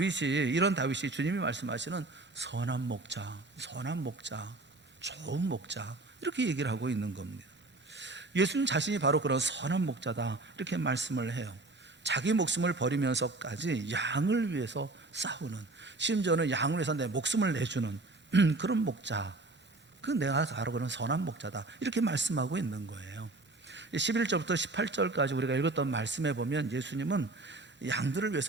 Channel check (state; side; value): quieter; left; 3.1 dB